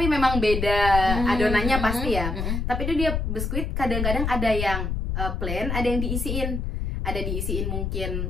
memang beda adonannya pasti ya. Tapi itu dia biskuit, kadang-kadang ada yang plain, ada yang diisiin. Ada diisiin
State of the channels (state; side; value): noise; left; rumble, 2 dB below the sound